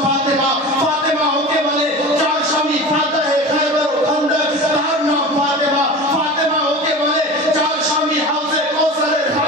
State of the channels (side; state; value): both; normal; correlation 0.33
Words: ফাতেমা। ফাতেমা ওকে বলে যার স্বামী ফাতাহে খায়বার ও খান্দক তার নাম ফাতেমা। ফাতেমা ওকে বলে যার স্বামী হাউজে কাউসারের